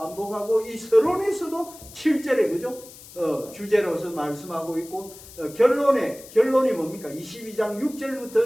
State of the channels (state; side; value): noise; left; hiss, 18 dB below the sound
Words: 이 서론에서도 7절에 그죠? 주제로서 말씀하고 있고 결론이 뭡니까? 22장